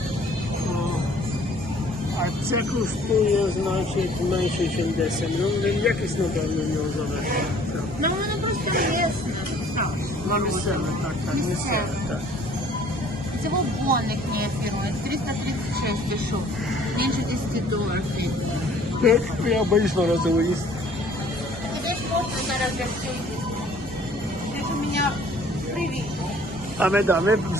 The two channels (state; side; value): normal; both; correlation 0.55